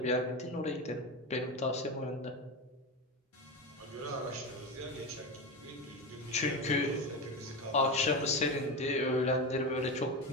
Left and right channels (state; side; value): normal; both; correlation 0.19